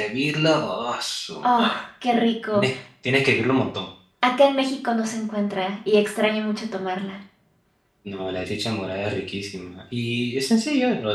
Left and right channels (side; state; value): both; identical; correlation 1.00